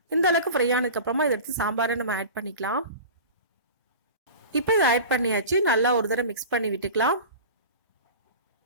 இந்த அளவுக்கு ஃப்ரை ஆனதுக்கப்புறமா இதை எடுத்து சாம்பாரை நம்ம ஆட் பண்ணிக்கலாம். இப்போ இதை ஆட் பண்ணியாச்சு. நல்லா ஒரு தடவை மிக்ஸ் பண்ணி விட்டுக்கலாம்.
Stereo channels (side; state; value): both; inverted; correlation -0.34